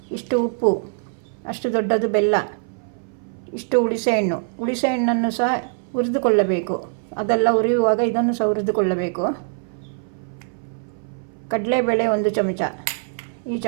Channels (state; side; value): silent; left; 59 dB below the other